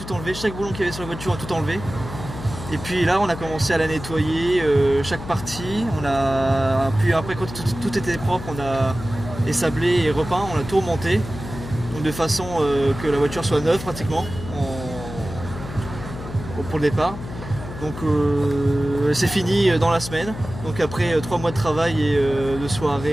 enlevé, chaque boulon qu'il y avait sur la voiture, on a tout enlevé. Et puis là, on a commencé à la nettoyer, chaque partie. Puis après, quand tout était propre, on a ésablé et repeint, on a tout remonté. Donc de façon que la voiture soit neuve pratiquement pour le départ. Donc c'est fini dans la semaine. Donc après 3 mois de travail et de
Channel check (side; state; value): left; noise; hum, 11 dB below the sound